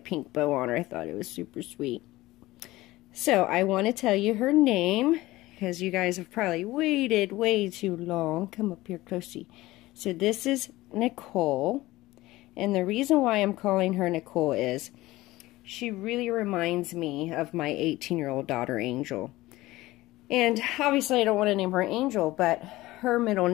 bow on her. I thought it was super sweet. So I want to tell you her name because you guys have probably waited way too long. Come up here closely. So this is Nicole, and the reason why I'm calling her Nicole is she really reminds me of my 18-year-old daughter Angel. And obviously I don't want to name her Angel, but her middle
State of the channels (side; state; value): right; quieter; 18.2 dB